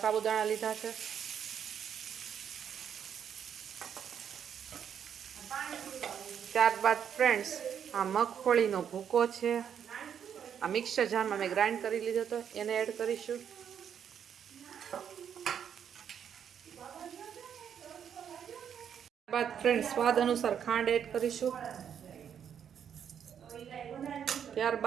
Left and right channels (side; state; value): left; quieter; 8.4 dB